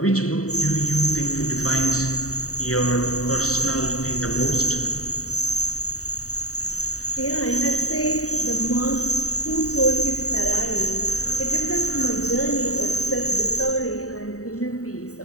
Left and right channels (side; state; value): right; late; 0.65 ms